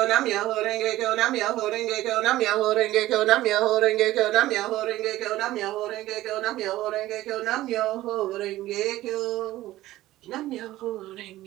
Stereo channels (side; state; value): left; quieter; 15.8 dB